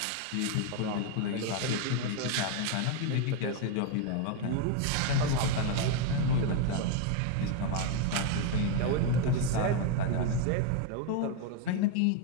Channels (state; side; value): different; both; correlation 0.01